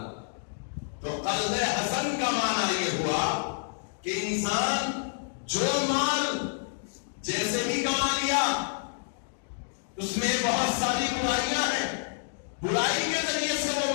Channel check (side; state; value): right; silent; digital silence